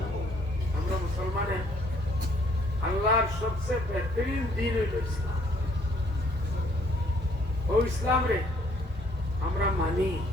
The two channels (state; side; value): normal; both; correlation 0.64